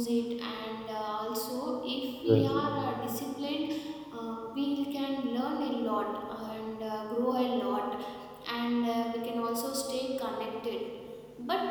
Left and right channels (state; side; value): identical; both; correlation 1.00